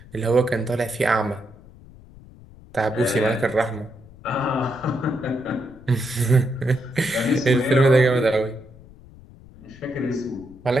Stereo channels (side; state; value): left; noise; rumble, 21 dB below the sound